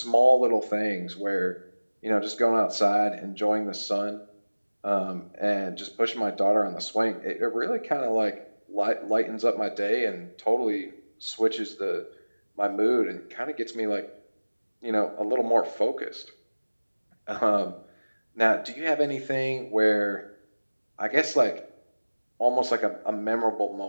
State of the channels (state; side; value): inverted; both; correlation -1.00